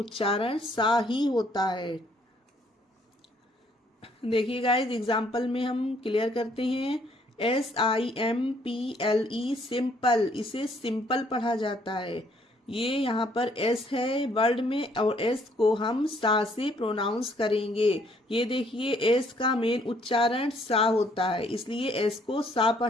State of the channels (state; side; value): normal; both; correlation 0.66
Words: सा ही होता है। देखिए गाइस, एग्जाम्पल में हम क्लियर करते हैं। SIMPLE सिंपल, इसे सिंपल पढ़ा जाता है। ये यहाँ पर एस है वर्ड में और एस को हम सा से प्रोनाउंस करेंगे। ये देखिए, एस का मेन उच्चारण सा होता है, इसलिए एस को सा